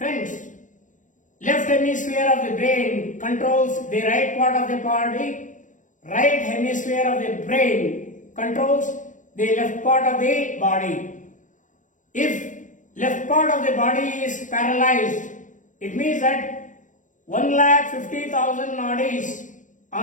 left hemisphere of the brain controls the right part of the body. Right hemisphere of the brain controls the left part of the body. If left part of the body is paralyzed, it means that 1,50,000 nadis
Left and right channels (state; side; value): late; right; 0.37 ms